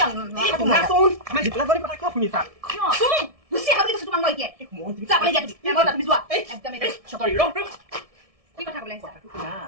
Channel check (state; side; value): late; left; 1.7 ms